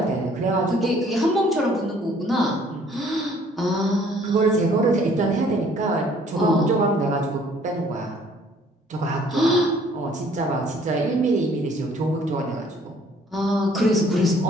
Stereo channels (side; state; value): both; normal; correlation 0.59